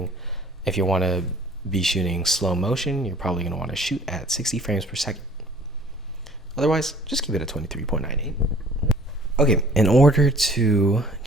be shooting slow motion, you're probably going to want to shoot at 60 frames per second. Otherwise, just keep it at 23.98. Okay, in order to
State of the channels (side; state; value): both; normal; correlation 0.53